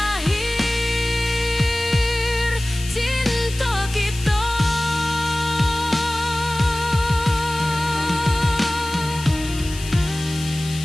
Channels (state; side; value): noise; left; hiss, 12 dB below the sound